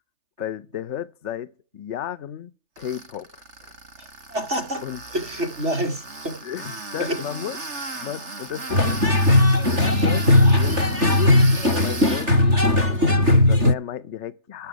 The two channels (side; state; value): left; late; 3.3 ms